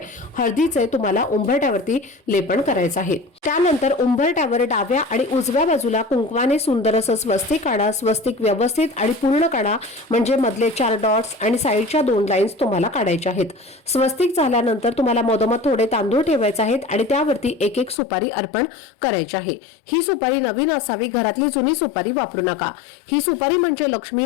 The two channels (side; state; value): right; drops out; at 17.9 s